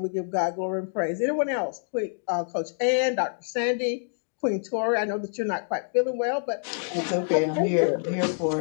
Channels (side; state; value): right; silent; digital silence